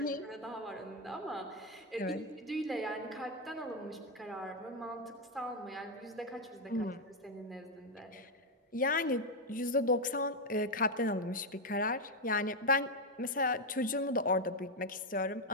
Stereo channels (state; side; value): normal; both; correlation 0.04